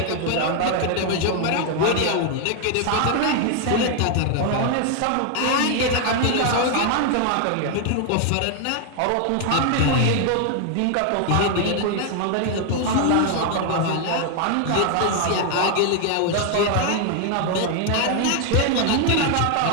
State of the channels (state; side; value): different; both; correlation 0.00